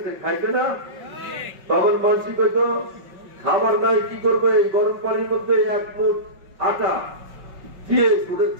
খাইছে না? তখন মানসিক হয়তো খাবার নাই, কি করবে, এই গরম পানির মধ্যে 1 মুঠ আটা দিয়ে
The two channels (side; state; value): left; late; 5.3 ms